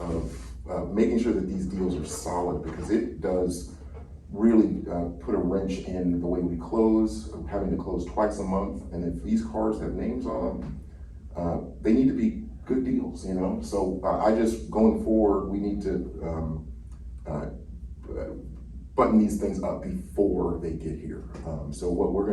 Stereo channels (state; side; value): identical; both; correlation 1.00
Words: making sure that these deals are solid, because it does really put a wrench in the way we close, having to close twice a month. And if these cars have names on them, they need to be good deals, you know? So I just, going forward, we need to button these things up before they get here. So what we're